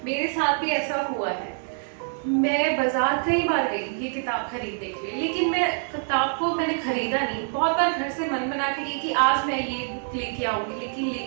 मेरे साथ भी ऐसा हुआ है। मैं बाजार कई बार गई ये किताब खरीदने के लिए, लेकिन मैं किताब को मैंने खरीदा नहीं। बहुत बार घर से मन बना के गई कि आज मैं ये बुक लेके आऊंगी, लेकिन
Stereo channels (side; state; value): left; silent; 61 dB below the other